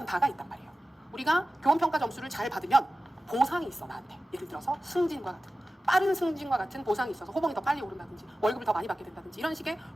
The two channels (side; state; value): both; normal; correlation 0.95